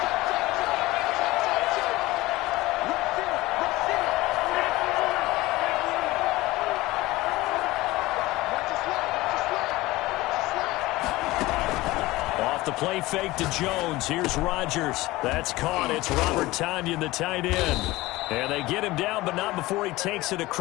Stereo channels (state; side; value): quieter; right; 19.2 dB